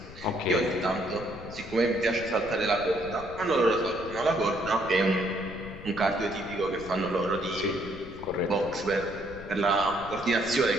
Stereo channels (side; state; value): left; noise; rumble, 15 dB below the sound